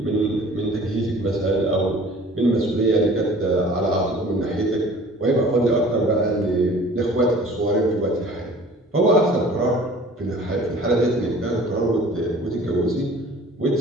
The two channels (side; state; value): both; normal; correlation 0.48